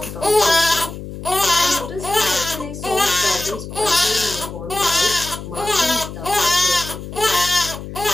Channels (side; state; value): left; noise; hum, 10 dB below the sound